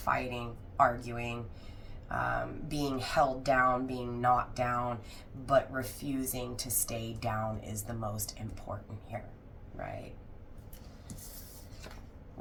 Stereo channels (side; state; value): both; identical; correlation 1.00